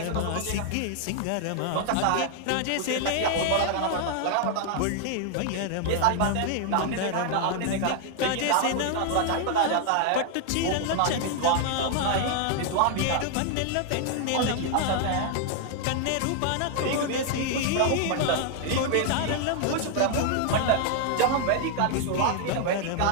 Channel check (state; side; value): different; both; correlation 0.00